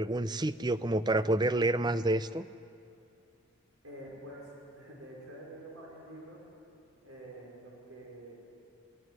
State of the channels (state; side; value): normal; both; correlation 0.58